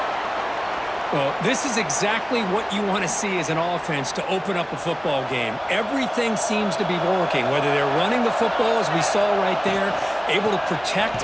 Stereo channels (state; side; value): identical; both; correlation 1.00